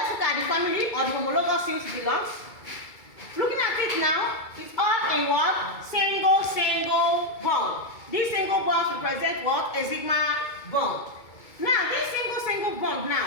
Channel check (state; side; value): late; right; 2.3 ms